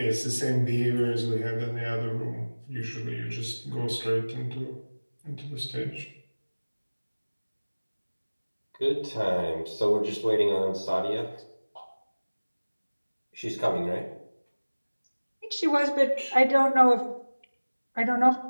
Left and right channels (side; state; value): both; inverted; correlation -1.00